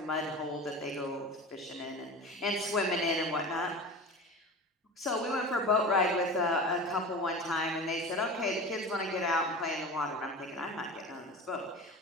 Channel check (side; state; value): both; normal; correlation 0.33